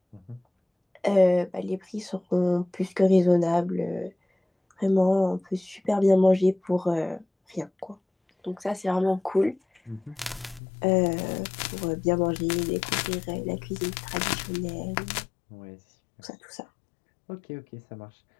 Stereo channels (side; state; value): right; drops out; at 10.6 s